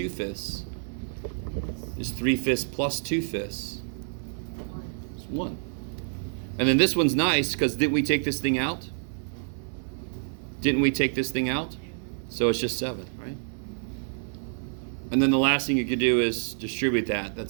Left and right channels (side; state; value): left; silent; digital silence